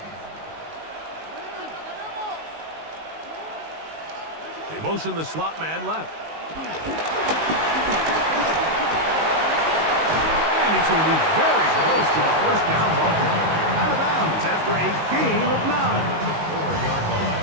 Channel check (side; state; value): left; late; 19 ms